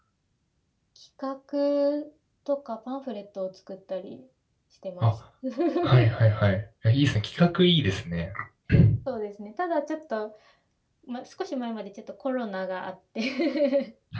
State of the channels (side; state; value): both; identical; correlation 1.00